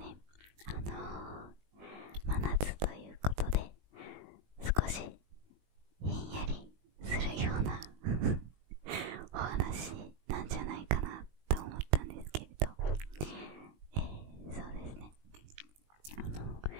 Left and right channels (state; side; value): late; left; 20 ms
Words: 真夏ということで、少しひんやりするようなお話なんじゃないかなと思ったんですけれど、そうですね。